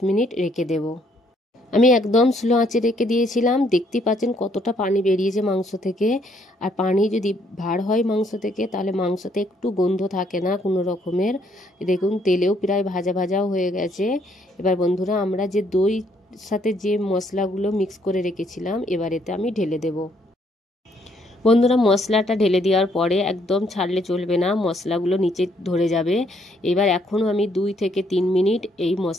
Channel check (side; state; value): both; normal; correlation 0.69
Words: মিনিট রেখে দেব। আমি একদম স্লো আঁচে রেখে দিয়েছিলাম। দেখতে পাচ্ছেন কতটা পানি বেরিয়েছে মাংস থেকে। আর পানি যদি ভার হয় মাংস থেকে, তাহলে মাংসতে একটু গন্ধ থাকে না কোনো রকমের। দেখুন তেলেও প্রায় ভাজা ভাজাও হয়ে গেছে। এবার বন্ধুরা আমরা যে দই সাথে যে মশলাগুলো মিক্স করে রেখেছিলাম, এবার এতে আমি ঢেলে দেব। বন্ধুরা মশলাটা ঢেলে দেওয়ার পরে একদম ছাড়লে চলবে না, মশলাগুলো নিচে ধরে যাবে। এবার এখনও আমি 2 থেকে 3 মিনিট এই